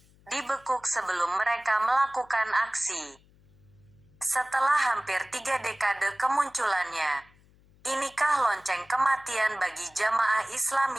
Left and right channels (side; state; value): left; noise; hum, 29 dB below the sound